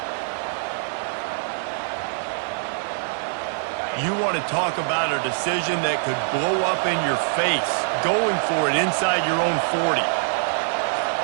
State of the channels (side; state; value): left; silent; digital silence